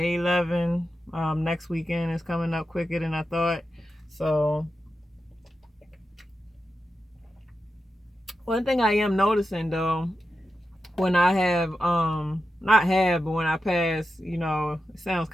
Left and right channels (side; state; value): both; normal; correlation 0.90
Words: 11. Next weekend is coming up quicker than I thought. So one thing I am noticing though, when I have but when I pass, it sounds